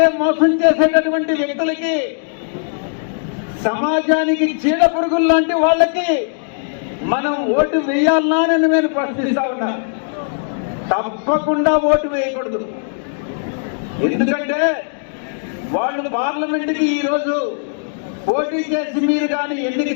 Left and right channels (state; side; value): silent; right; digital silence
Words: మోసం చేసేటటువంటి వ్యక్తులకి, సమాజానికి చీడ పురుగులు లాంటి వాళ్ళకి మనం ఓటు వేయాలనా అని నేను ప్రశ్నిస్తా ఉన్నా. తప్పకుండా ఓటు వేయకూడదు. ఎందుకంటే వాళ్ళు పార్లమెంటుకి ఈరోజు పోటీ చేసి మీరు కానీ ఎన్నిక